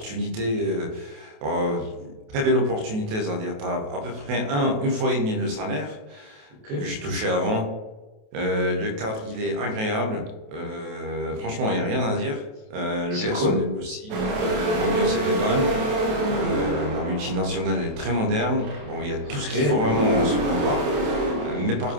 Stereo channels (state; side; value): late; left; 28 ms